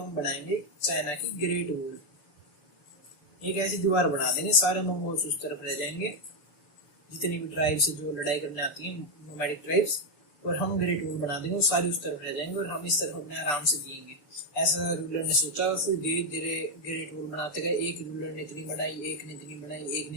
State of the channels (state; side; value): late; right; 7.0 ms